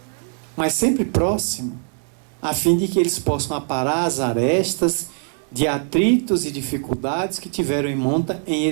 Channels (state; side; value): silent; left; 60 dB below the other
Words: mas sempre próximo, a fim de que eles possam aparar as arestas de atritos e dificuldades que tiveram em monta em